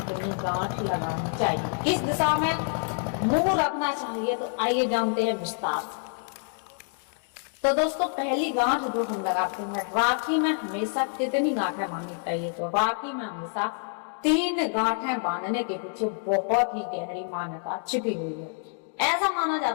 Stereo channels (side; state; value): right; silent; 60 dB below the other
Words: गांठ लगानी चाहिए, किस दिशा में मुंह रखना चाहिए, तो आइए जानते हैं विस्तार। तो दोस्तों पहली गांठ जो हम लगाते हैं, राखी में हमेशा कितनी गांठें बांधनी चाहिए। तो राखी में हमेशा 3 गांठें बांधने के पीछे बहुत ही गहरी मान्यता छिपी हुई है। ऐसा माना